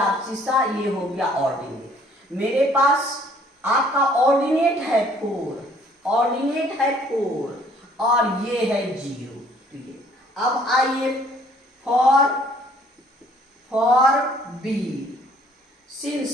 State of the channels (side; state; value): both; normal; correlation 0.59